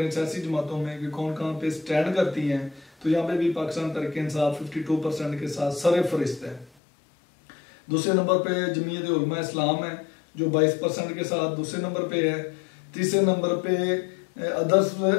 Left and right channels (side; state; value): right; drops out; at 6.7 s